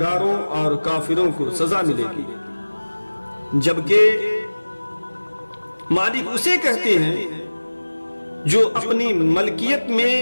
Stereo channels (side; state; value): both; inverted; correlation -1.00